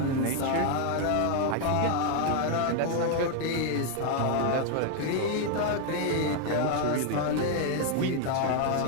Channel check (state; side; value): different; both; correlation 0.00